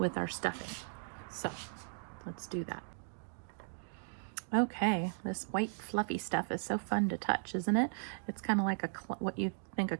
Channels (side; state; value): left; silent; digital silence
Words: our stuffing. So let's do that. Okay, this white fluffy stuff is so fun to touch, isn't it? It's kind of like what you think a